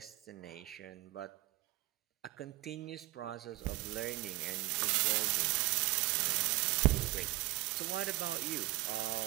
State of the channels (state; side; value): quieter; left; 18.9 dB